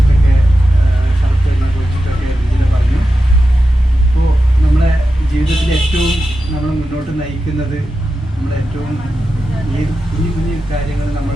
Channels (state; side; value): normal; both; correlation 0.91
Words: ഷർഫിനെ കുറിച്ചിട്ടൊക്കെ ഇതിൽ പറഞ്ഞു. അപ്പോൾ നമ്മളെ ജീവിതത്തിൽ ഏറ്റവും നമ്മൾ മുന്നോട്ട് നയിക്കുന്നത് നമ്മളേറ്റവും ഏത് കുഞ്ഞു കുഞ്ഞു കാര്യങ്ങൾ